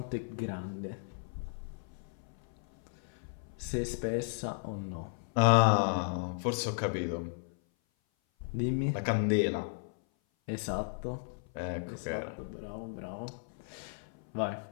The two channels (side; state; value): right; silent; 55 dB below the other